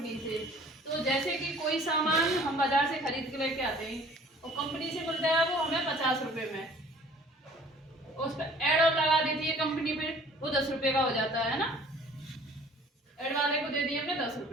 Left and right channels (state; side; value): normal; both; correlation 0.51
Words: से। तो जैसे कि कोई सामान हम बाजार से खरीद के लेके आते हैं और कंपनी से मिलता है वो हमें 50 रुपए में, उस पर एड और लगा देती है कंपनी पे, वो 10 रुपए का हो जाता है ना। एड वाले को दे दिए हमने 10